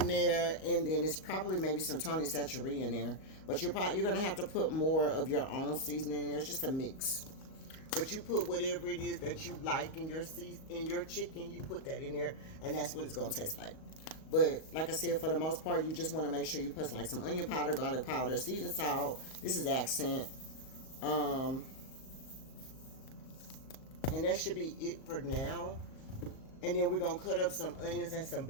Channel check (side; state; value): right; late; 38 ms